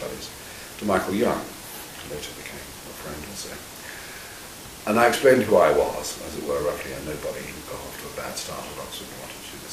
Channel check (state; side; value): identical; both; correlation 1.00